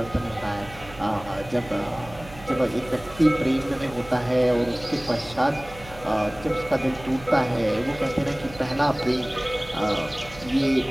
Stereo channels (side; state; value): right; noise; hum, 18 dB below the sound